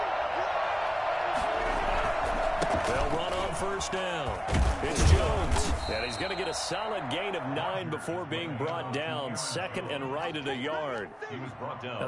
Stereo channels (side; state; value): both; identical; correlation 1.00